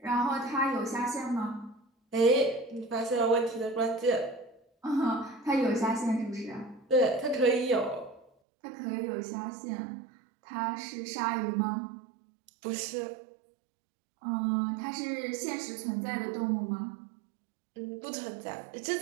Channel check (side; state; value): left; drops out; at 8.3 s